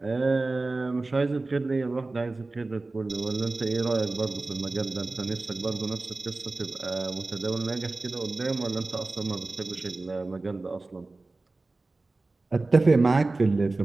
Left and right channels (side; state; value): left; quieter; 3.3 dB